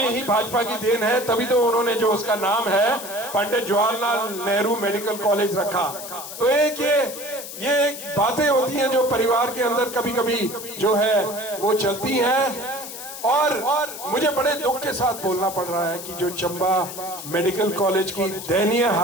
ही भाजपा की देन है, तभी तो उन्होंने जो उसका नाम है पंडित जवाहरलाल नेहरू मेडिकल कॉलेज रखा। तो ये बातें होती हैं जो परिवार के अंदर कभी कभी जो है वो चलती हैं। और मुझे बड़े दुख के साथ बोलना पड़ रहा है कि जो चंबा मेडिकल कॉलेज की दयनीय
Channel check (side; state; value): left; noise; hiss, 10 dB below the sound